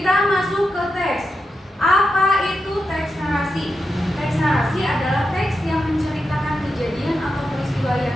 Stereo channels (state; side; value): normal; both; correlation 0.87